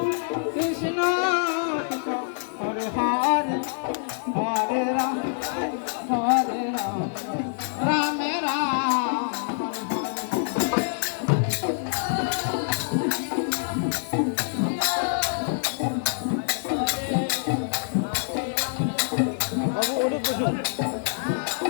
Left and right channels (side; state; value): right; silent; digital silence